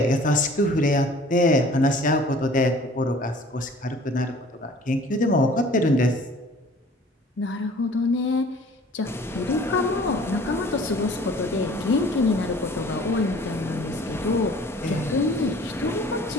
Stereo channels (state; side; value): normal; both; correlation 0.50